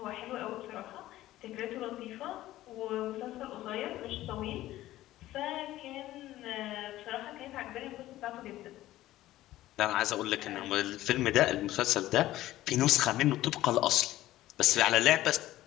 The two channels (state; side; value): quieter; right; 15.2 dB